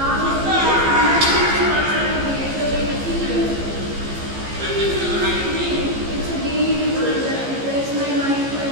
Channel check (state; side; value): late; left; 15 ms